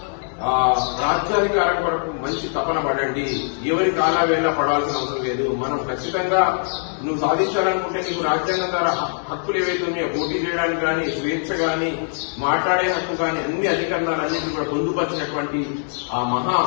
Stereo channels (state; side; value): silent; right; digital silence